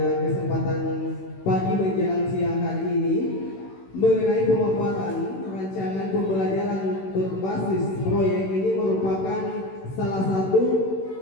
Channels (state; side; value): late; right; 16 ms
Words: kesempatan pagi menjelang siang hari ini mengenai pemaparan rancangan pembelajaran berbasis proyek. Ini merupakan salah satu